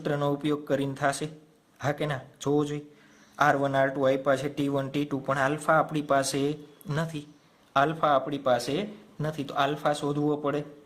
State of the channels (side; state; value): both; identical; correlation 1.00